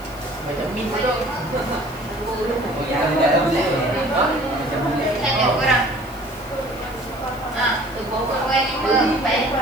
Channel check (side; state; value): left; noise; hiss, 22 dB below the sound